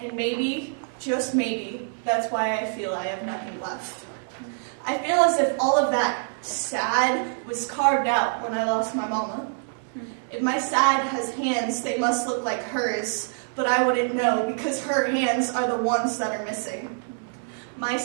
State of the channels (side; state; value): left; silent; digital silence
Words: maybe, just maybe, that's why I feel I have nothing left. I feel as if all of that sad was carved out when I lost my mama. If my sad has hands, they must look like hers, but I wouldn't know because her hands are the ones that are missing. My